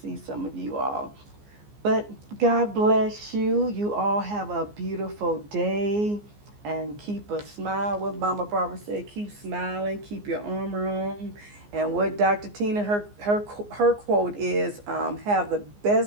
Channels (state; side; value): late; left; 14 ms